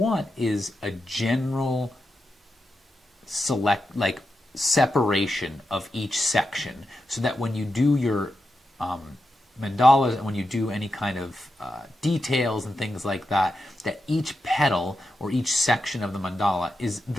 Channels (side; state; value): both; normal; correlation 0.88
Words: is a general separation of each section, so that when you do your mandalas, and when you do any kind of details and things like that, that each petal or each section of the mandala is